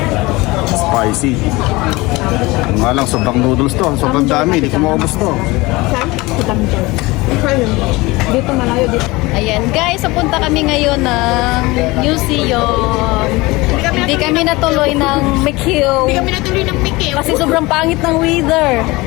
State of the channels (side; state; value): right; quieter; 22.2 dB